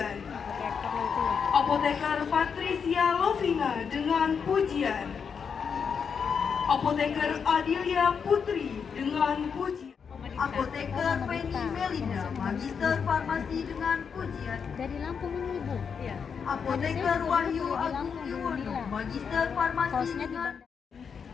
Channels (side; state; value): right; quieter; 6.4 dB